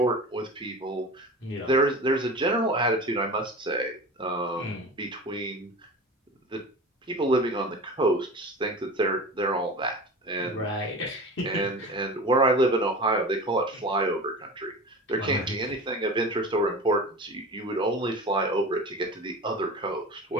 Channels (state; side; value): normal; both; correlation 0.34